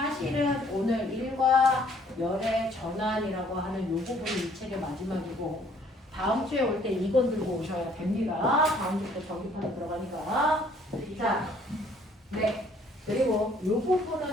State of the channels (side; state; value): both; normal; correlation 0.61